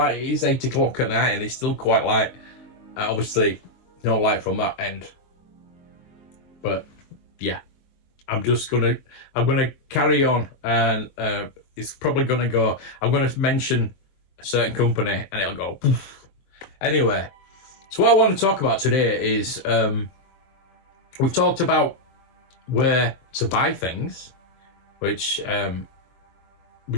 It is 8 o'clock at night, and it's still quite light. Obviously, no light from that end. But yeah, I'm gonna carry on, and it's probably gonna go. I'm gonna mention a certain company, and it'll go poof. Anyway, so what I want to talk about today is we've talked about where to buy things, which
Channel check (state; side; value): late; right; 22 ms